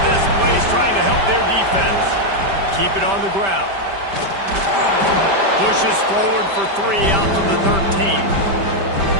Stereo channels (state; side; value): late; left; 5.1 ms